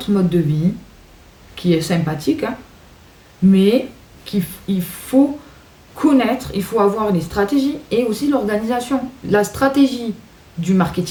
mode de vie, qui est sympathique, hein, mais il faut connaître, il faut avoir les stratégies et aussi l'organisation. La stratégie du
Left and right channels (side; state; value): both; identical; correlation 1.00